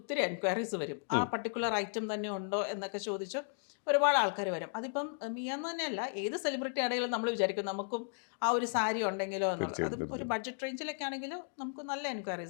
എൻക്വയറീസ് വരും. ആ പർട്ടിക്കുലർ ഐറ്റം തന്നെ ഉണ്ടോ എന്നൊക്കെ ചോദിച്ച് ഒരുപാട് ആൾക്കാർ വരും. അതിപ്പം മിയാന്ന് തന്നെയല്ല, ഏത് സെലിബ്രിറ്റി ആണെങ്കിലും നമ്മൾ വിചാരിക്കും നമുക്കും ആ ഒരു സാരി ഉണ്ടെങ്കിലോ എന്നുള്ളത്. അതും തീർച്ചയായിട്ടും ഒരു ബഡ്ജറ്റ് റേഞ്ചിലൊക്കെ ആണെങ്കിൽ നമുക്ക് നല്ല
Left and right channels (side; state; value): right; silent; digital silence